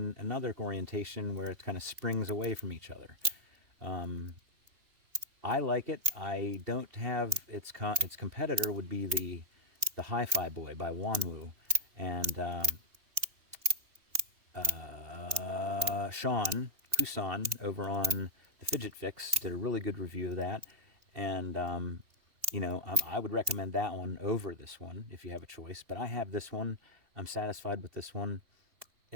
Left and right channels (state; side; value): late; left; 3.0 ms